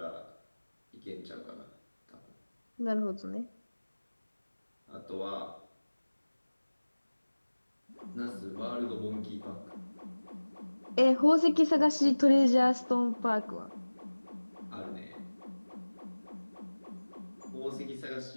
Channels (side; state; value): both; inverted; correlation -1.00